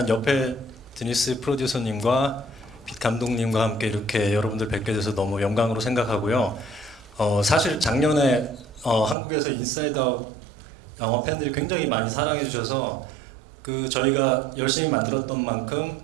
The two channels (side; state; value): left; drops out; at 9.2 s